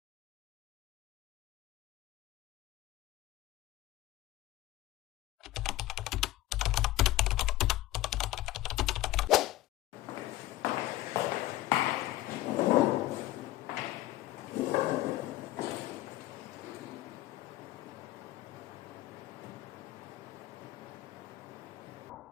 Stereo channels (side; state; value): right; quieter; 16.2 dB